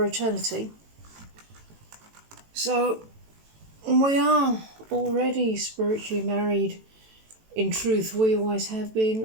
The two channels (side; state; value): left; late; 18 ms